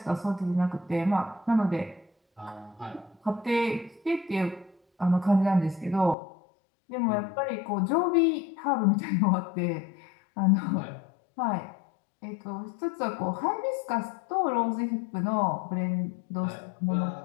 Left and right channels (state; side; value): drops out; right; at 6.2 s